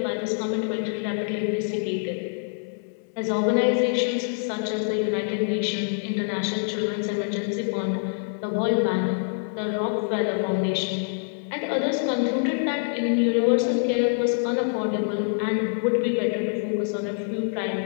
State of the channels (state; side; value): silent; right; 61 dB below the other